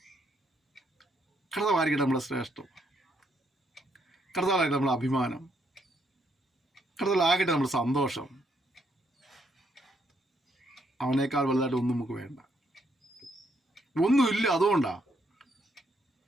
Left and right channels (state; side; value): normal; both; correlation 0.74